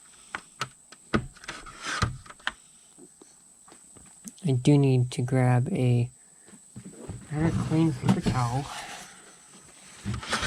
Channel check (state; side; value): identical; both; correlation 1.00